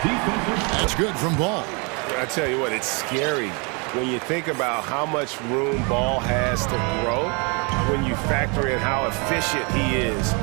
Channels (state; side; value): quieter; left; 32.5 dB